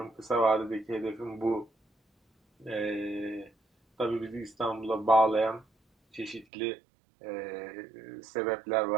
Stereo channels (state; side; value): drops out; left; at 6.5 s